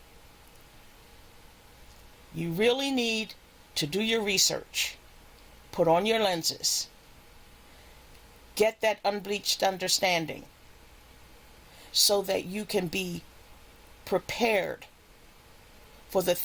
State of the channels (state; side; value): identical; both; correlation 1.00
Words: You really need to do your research, put on your lenses, get that unbleached understanding so that you can be prepared for the